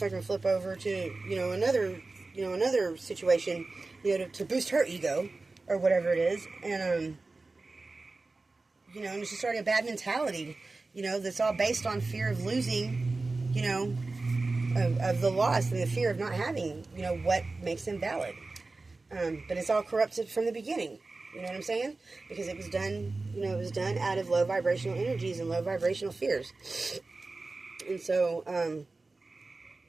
flip over to, another situation, to boost her ego or whatever it is. And, and it's just already a bad mentality, that's all based on fear of losing, of the loss and the fear of not having, what makes them valid. But it's all corrupted from the beginning. You know what I'm saying? Because it was done, out of low vibrational energies and low vibrational fears. And so,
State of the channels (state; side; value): quieter; left; 3.5 dB